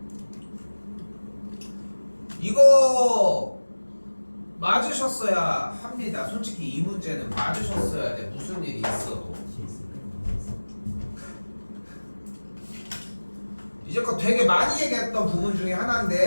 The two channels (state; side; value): inverted; both; correlation -1.00